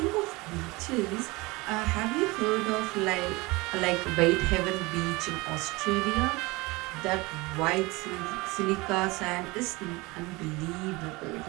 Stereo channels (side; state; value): left; quieter; 23.3 dB